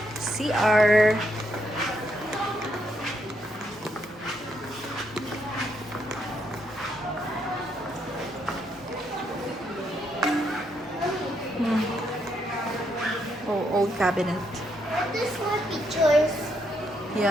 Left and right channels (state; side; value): normal; both; correlation 0.76